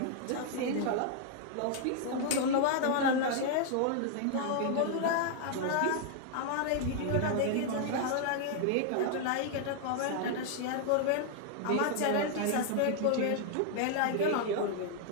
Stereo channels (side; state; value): both; different; correlation 0.00